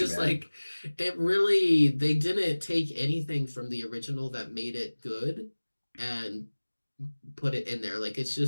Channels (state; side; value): inverted; both; correlation -1.00